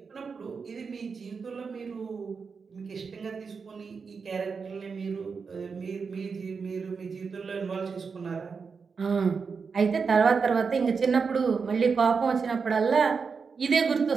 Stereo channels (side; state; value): left; quieter; 5.3 dB